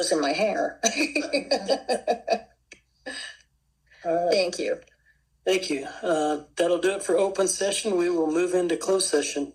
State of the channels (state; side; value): identical; both; correlation 1.00